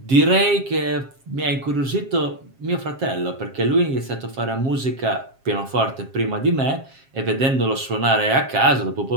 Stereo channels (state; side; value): late; left; 7.5 ms